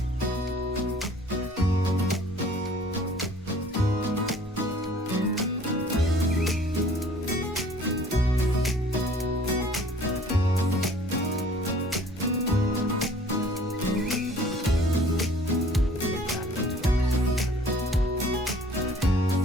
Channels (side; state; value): both; normal; correlation 0.52